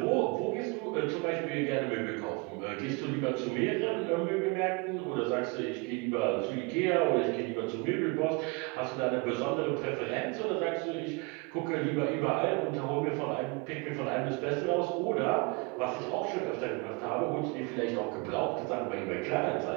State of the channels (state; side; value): quieter; left; 28.8 dB